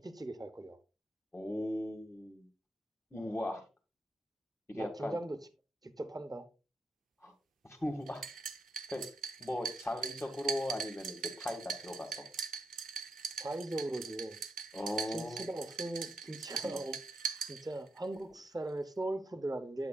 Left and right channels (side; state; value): both; normal; correlation 0.83